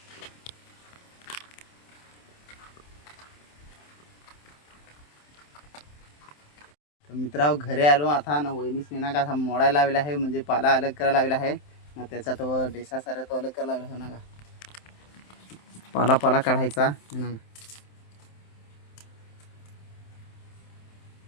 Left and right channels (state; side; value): late; right; 27 ms